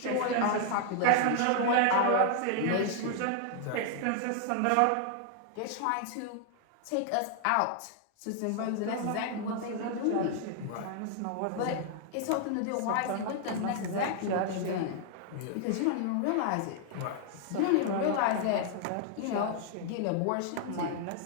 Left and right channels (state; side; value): different; both; correlation 0.00